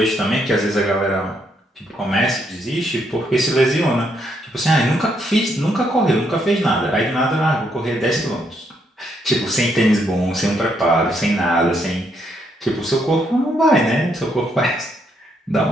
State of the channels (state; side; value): normal; both; correlation 0.75